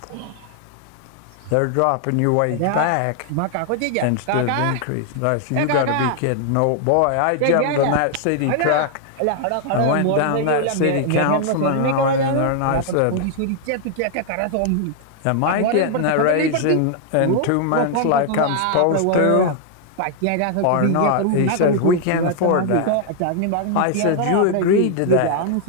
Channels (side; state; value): both; different; correlation 0.00